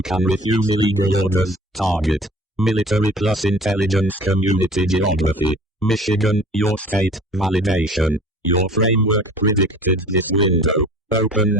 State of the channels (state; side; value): normal; both; correlation 0.45